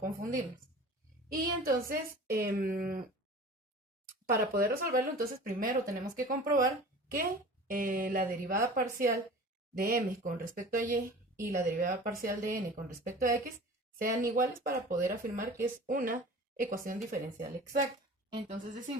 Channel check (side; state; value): both; normal; correlation 0.40